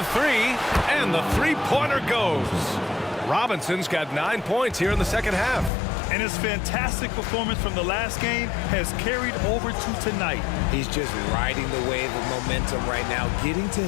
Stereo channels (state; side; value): drops out; right; at 5.7 s